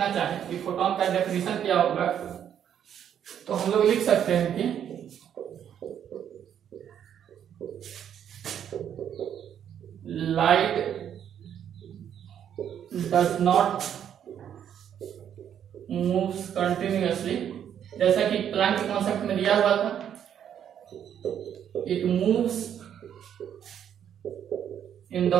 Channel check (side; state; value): left; quieter; 9.3 dB